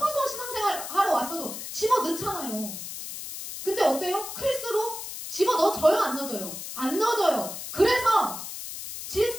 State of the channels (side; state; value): left; noise; hiss, 8 dB below the sound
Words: 신앙생활 하러 왔어도 집어넣잖아요. 근데 어때요? 클수록 집어넣어져요? 안 넣어져요? 안 넣어져요. 그래서